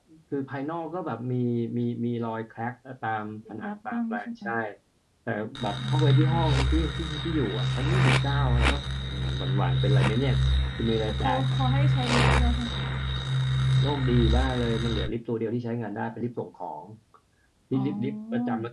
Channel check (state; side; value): identical; both; correlation 1.00